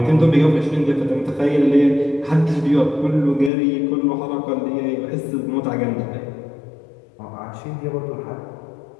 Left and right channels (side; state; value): right; drops out; at 3.5 s